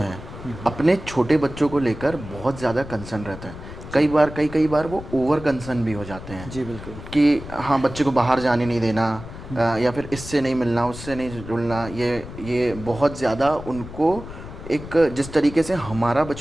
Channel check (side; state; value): left; noise; rumble, 13 dB below the sound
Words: अपने छोटे बच्चों को लेकर बहुत ज़्यादा कंसर्न रहते हैं। कई बार वो ओवर कंसर्न भी हो जाते हैं। जी बिल्कुल। कि हाँ, बच्चे को बाहर जाने नहीं देना, या फिर इससे नहीं मिलना, उससे नहीं जुड़ना, ये बहुत ज़्यादा उनको एक, जिस तरीके से हमारा